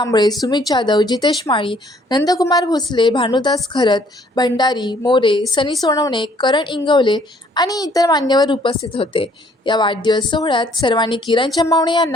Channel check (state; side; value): normal; both; correlation 0.62